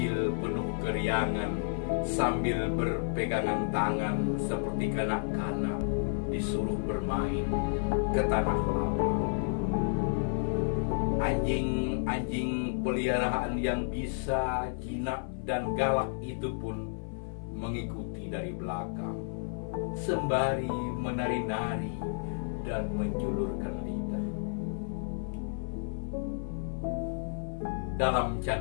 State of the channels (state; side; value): silent; right; 57 dB below the other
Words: penuh keriangan sambil berpegangan tangan seperti kanak-kanak disuruh bermain ke tanah lapang. Anjing-anjing peliharaan yang bisa, jinak dan galak itu pun mengikuti dari belakang, sembari menari-nari dan menjulurkan lidah. Dalam